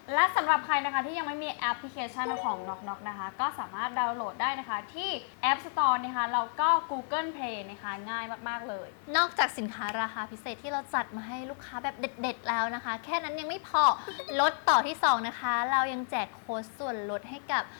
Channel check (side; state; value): right; silent; 57 dB below the other